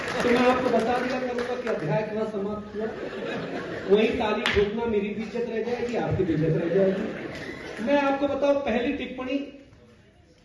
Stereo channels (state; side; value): identical; both; correlation 1.00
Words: तो मैं आपको बता दिया करूंगा कि अध्याय कितना समाप्त हुआ, वही ताली ठोकना मेरी भी इज्जत रह जाएगी, आपकी भी इज्जत रह जाएगी। मैं आपको बताऊं, पहली टिप्पणी,